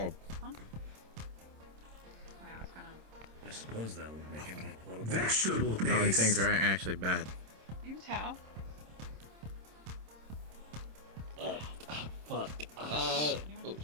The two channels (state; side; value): late; left; 26 ms